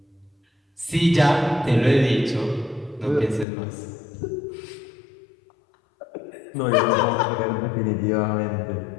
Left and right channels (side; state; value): right; drops out; at 3.5 s